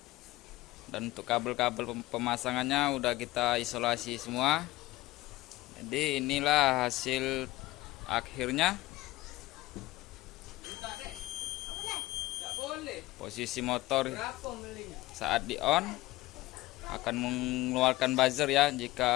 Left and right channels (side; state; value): right; quieter; 18.3 dB